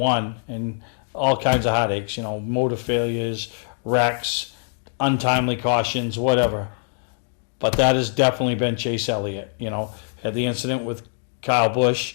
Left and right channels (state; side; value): silent; right; digital silence